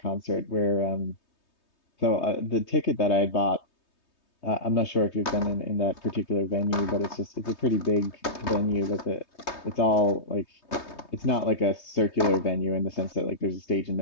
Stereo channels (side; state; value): right; late; 3.2 ms